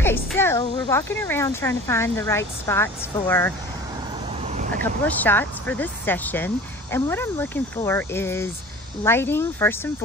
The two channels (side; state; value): both; normal; correlation 0.41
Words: so we're walking around trying to find the right spots for a couple of shots for this session. And what I'm looking for is lighting first and